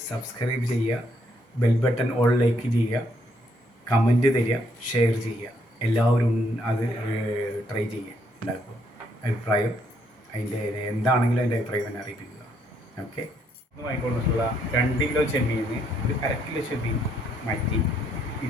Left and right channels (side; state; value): both; normal; correlation 0.72